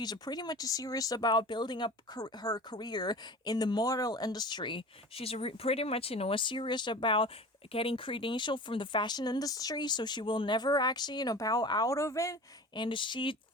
pretty much serious about building up her career in the model industry. She's pretty much, serious about getting credential from the fashion industry, so she will never actually, bow out of it. And she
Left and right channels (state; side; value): normal; both; correlation 0.37